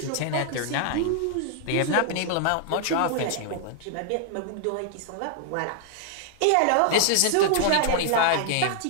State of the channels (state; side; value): different; both; correlation -0.01